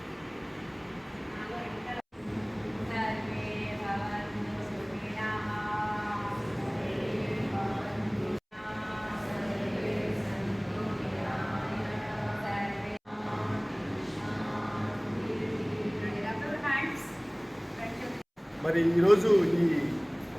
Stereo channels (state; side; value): identical; both; correlation 1.00